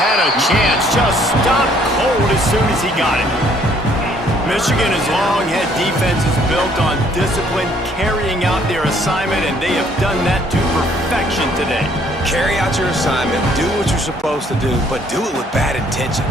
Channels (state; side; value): normal; both; correlation 0.63